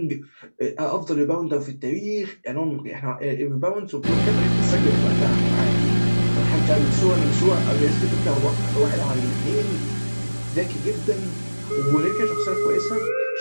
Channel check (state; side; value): inverted; both; correlation -1.00